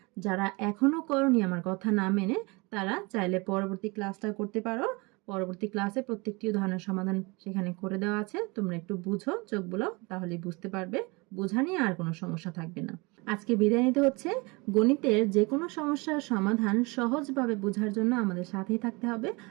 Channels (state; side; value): quieter; left; 26.8 dB